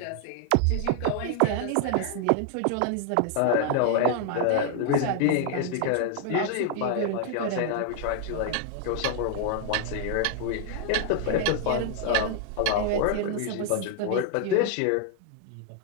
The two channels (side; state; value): both; different; correlation 0.00